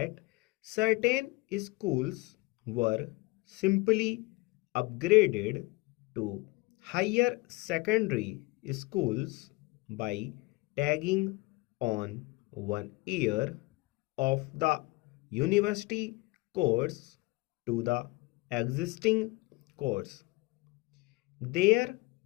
certain schools were simply upgraded to higher secondary schools by tagging on 1 year of the university course to the existing course. There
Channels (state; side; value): quieter; right; 24.0 dB